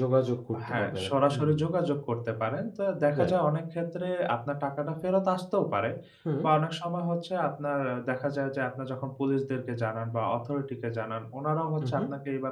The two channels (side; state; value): both; identical; correlation 1.00